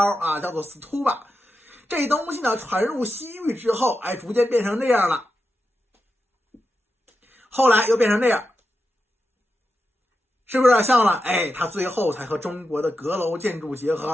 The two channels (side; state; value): both; normal; correlation 0.89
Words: 啊，叫做 stupa。 这东西呢传入西域之后，逐渐变成这样了，后来又变成这样，是不是有点像了？它最后才和中国的阁楼建筑结